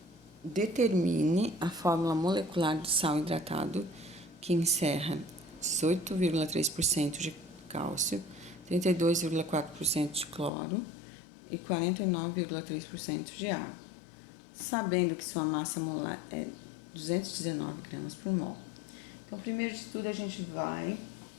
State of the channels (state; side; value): drops out; right; at 10.5 s